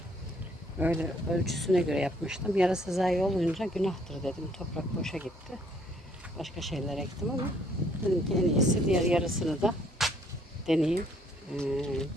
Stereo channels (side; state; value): both; normal; correlation 0.64